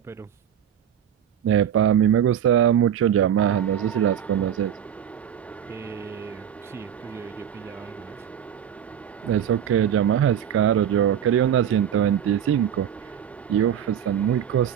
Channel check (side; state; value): left; quieter; 9.4 dB